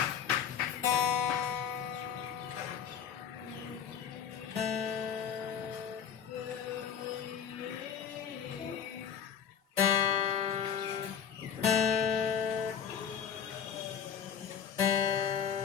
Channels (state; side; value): quieter; right; 8.0 dB